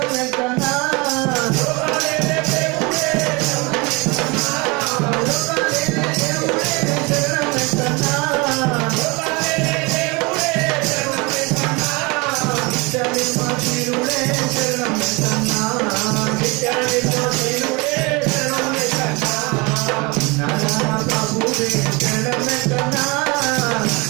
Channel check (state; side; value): quieter; left; 26.9 dB